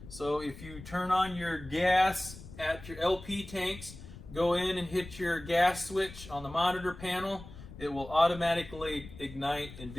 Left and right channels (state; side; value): noise; left; rumble, 15 dB below the sound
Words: So if you turn on your gas at your LP tanks, go in and hit your gas switch on the monitor panel, it will automatically ignite and